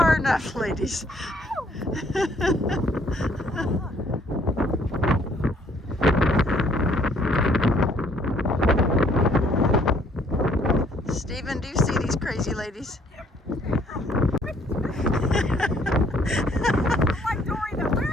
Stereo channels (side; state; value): both; normal; correlation 0.63